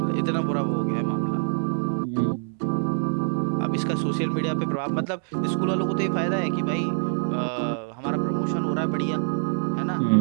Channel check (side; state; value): left; silent; 57 dB below the other